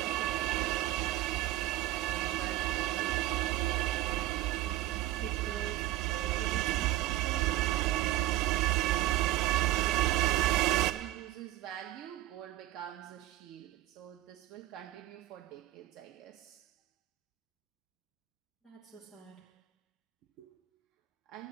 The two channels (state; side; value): quieter; left; 15.5 dB